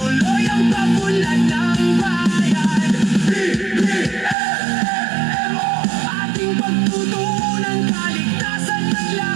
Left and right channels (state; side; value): drops out; left; at 4.4 s